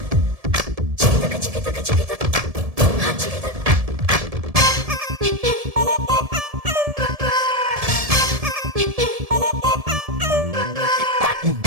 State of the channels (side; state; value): left; late; 1.7 ms